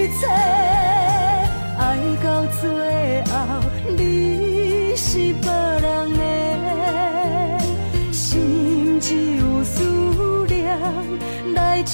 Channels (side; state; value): both; inverted; correlation -1.00